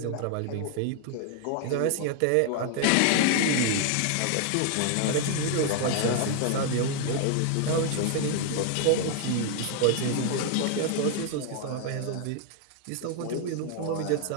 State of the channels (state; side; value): different; both; correlation 0.00